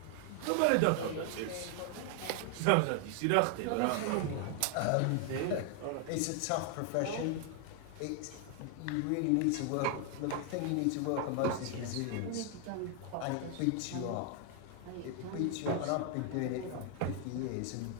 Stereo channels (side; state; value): both; different; correlation 0.00